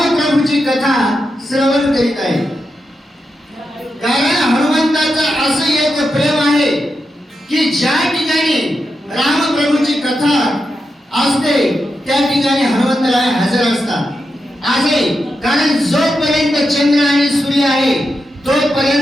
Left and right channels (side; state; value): both; normal; correlation 0.87